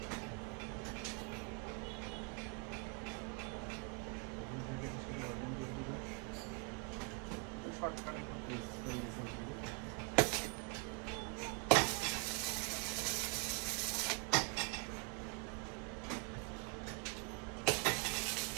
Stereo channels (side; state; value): left; quieter; 35.3 dB